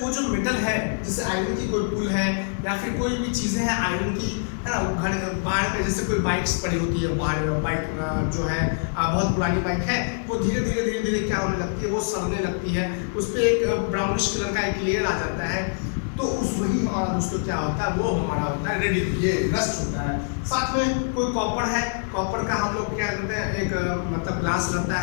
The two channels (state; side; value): silent; right; digital silence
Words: वो जो मेटल है, जैसे आयरन की कोई पुल है या फिर कोई भी चीज़ें हैं आयरन की, है ना, घर बाहर पे जैसे कोई बाइक्स पड़ी होती है, बाहर बाइक जो है बहुत पुरानी बाइक है, वो धीरे धीरे क्या होने लगती है, वो सड़ने लगती है, उस पर एक ब्राउनिश कलर का एक लेयर आ जाता है, तो उस वही हमारा दोस्तों क्या होता है, वो हमारा होता है रेडी, ये रस्ट होता है। साथ में कोई कॉपर है, कॉपर का हम लोग क्या करते हैं, एक मतलब ग्लास रहता है